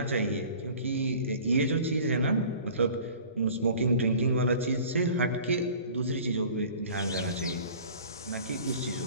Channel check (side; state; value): both; inverted; correlation -0.46